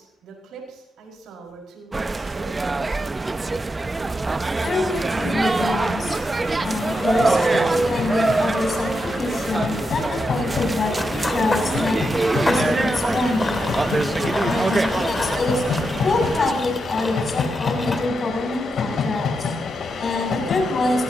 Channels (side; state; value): both; normal; correlation 0.85